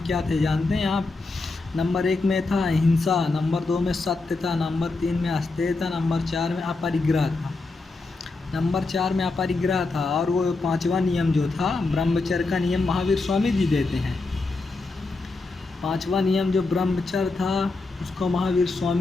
क्या थे जानते हैं आप? नंबर 1 में था अहिंसा, नंबर 2 में सत्य था, नंबर 3 में अस्तेय था, नंबर 4 में अपरिग्रह था। नंबर 4 में अपरिग्रह था। और वो 5वां नियम जो था ब्रह्मचर्य का नियम महावीर स्वामी जी देते हैं। 5वां नियम जो ब्रह्मचर्य था उसको महावीर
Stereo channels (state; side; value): quieter; right; 3.5 dB